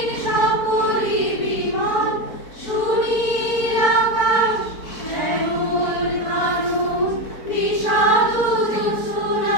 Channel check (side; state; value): right; late; 4.4 ms